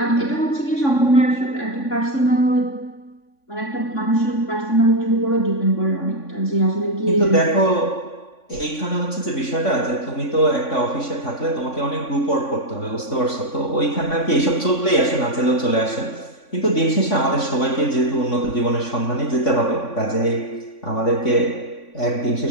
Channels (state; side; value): late; right; 3.5 ms